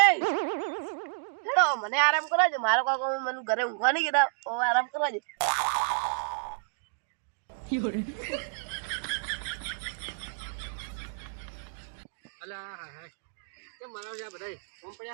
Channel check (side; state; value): left; silent; digital silence